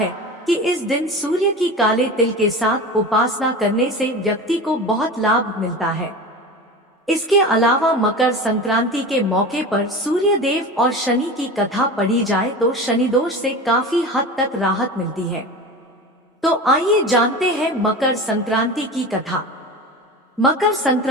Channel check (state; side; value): normal; both; correlation 0.30